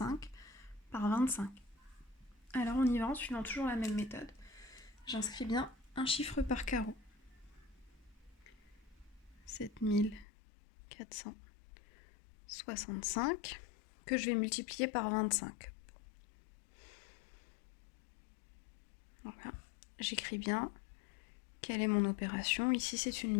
par 25. Alors on y va en suivant toujours la même méthode. J'inscris bien un chiffre par carreau. 7465 que je vais multiplier par 25. Voilà, j'écris bien quelle est mon opération. Ici c'est une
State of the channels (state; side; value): drops out; right; at 10.2 s